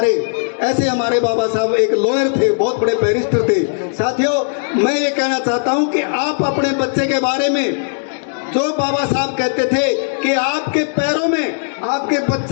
ऐसे हमारे बाबा साहब एक लॉयर थे, बहुत बड़े बैरिस्टर थे। साथियों, मैं ये कहना चाहता हूँ कि आप अपने बच्चे के बारे में जो बाबा साहब कहते थे कि आपके पैरों में, आपके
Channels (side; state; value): right; silent; digital silence